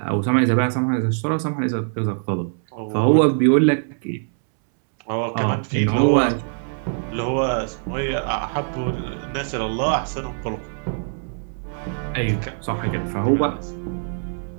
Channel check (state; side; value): silent; left; 63 dB below the other